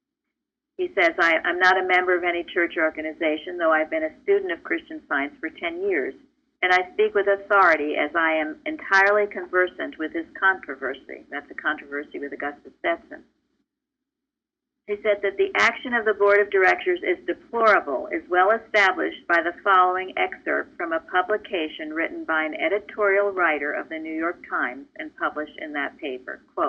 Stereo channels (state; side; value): identical; both; correlation 1.00